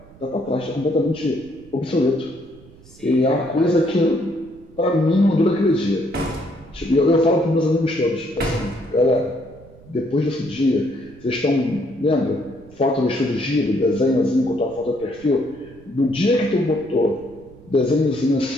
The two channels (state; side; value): noise; right; rumble, 23 dB below the sound